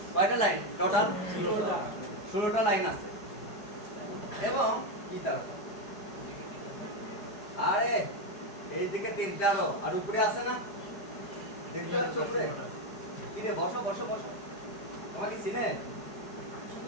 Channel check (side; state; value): right; late; 4.8 ms